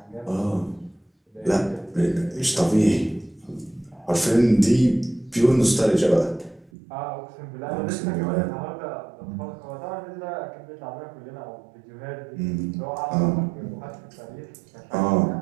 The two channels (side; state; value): left; drops out; at 6.7 s